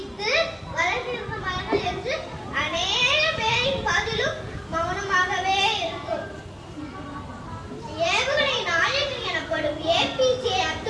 வளர்ந்திருந்த மரங்கள் என்று அநேக பேரின் பதிலும் மௌனமாகவே இருக்கும். ஏவுகணை நாயகன் எனப்படும் ஏபிஜே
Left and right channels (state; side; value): identical; both; correlation 1.00